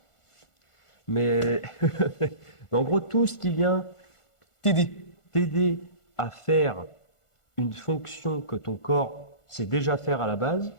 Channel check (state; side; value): late; right; 1.4 ms